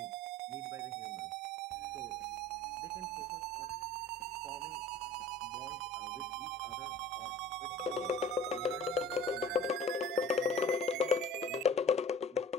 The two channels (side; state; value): both; normal; correlation 0.45